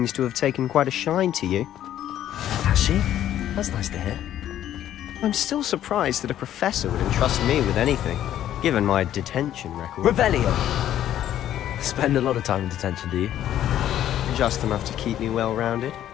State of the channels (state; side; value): quieter; right; 11.7 dB